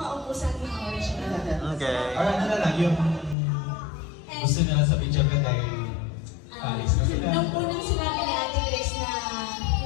ng oras. Okay. Or ano na lang, yung gusto nila sa video ka dahil Paris na sila. Nung unang sinabi ni Ate Grace na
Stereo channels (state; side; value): drops out; right; at 3.4 s